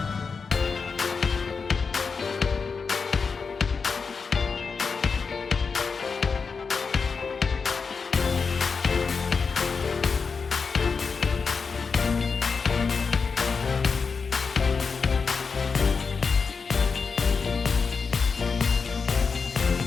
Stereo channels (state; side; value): quieter; right; 5.1 dB